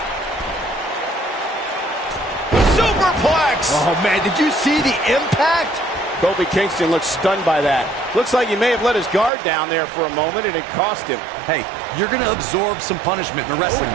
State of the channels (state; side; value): drops out; left; at 9.3 s